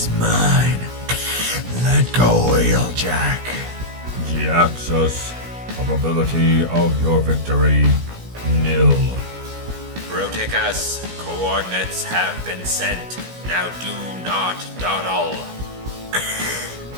mine. Let go, Wheeljack. Jhiaxus, probability of your victory, nil. Bruticus, coordinates have been sent. Now do not dawdle.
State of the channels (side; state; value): left; late; 17 ms